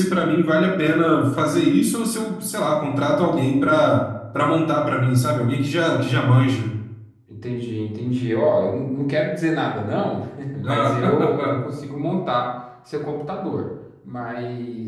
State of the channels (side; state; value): both; identical; correlation 1.00